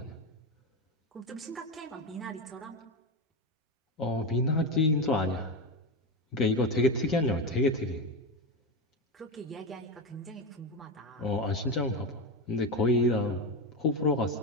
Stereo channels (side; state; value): both; normal; correlation 0.15